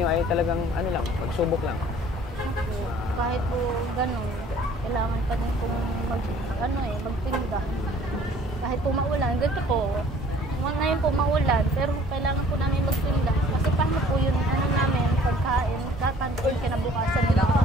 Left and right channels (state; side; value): normal; both; correlation 0.54